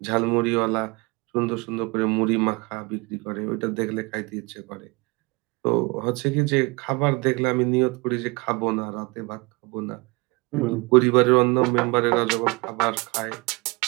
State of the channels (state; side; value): quieter; left; 26.6 dB